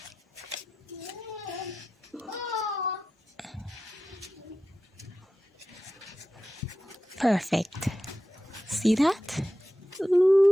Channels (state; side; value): normal; both; correlation 0.92